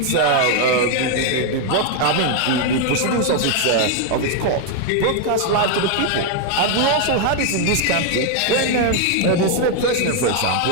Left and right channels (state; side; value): different; both; correlation 0.01